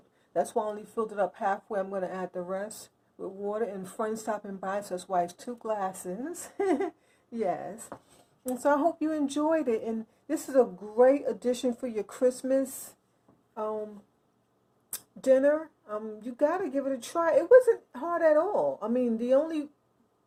That's why I only filled it up halfway. I'm going to add the rest with water. And friends stopping by, so that's why it's 2 glasses. Yes. And so I hope you enjoyed it. And this is a great addition for your Christmas dinner. You got to give it a try. It wasn't hard at all. I mean, the only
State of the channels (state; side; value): identical; both; correlation 1.00